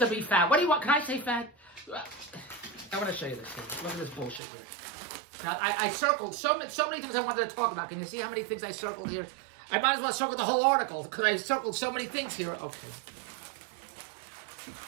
be fat. What do you want? Can I say fat? I want to show you this thing. Look at this bullshit here. Now, I circled so many things I wanted to talk about. Can you see how many things I circled here? I might as well circle the whole article because I circled so many things here. Okay.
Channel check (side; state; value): left; drops out; at 4.4 s